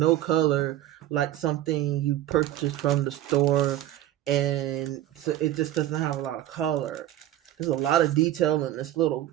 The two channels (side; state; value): left; quieter; 13.2 dB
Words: color, like something you purchased from the store, and so it just doesn't have a lot of color. There's a lot of detail in this little